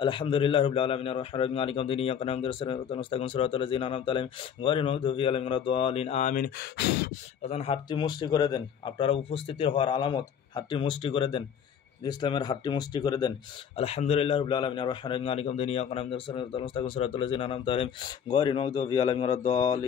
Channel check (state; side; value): quieter; right; 8.0 dB